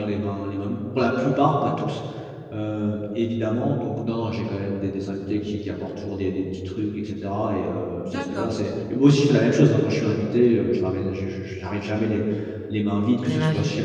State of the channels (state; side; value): identical; both; correlation 1.00